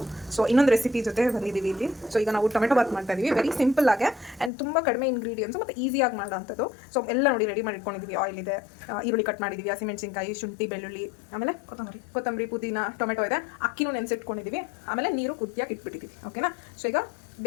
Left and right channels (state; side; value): drops out; right; at 4.5 s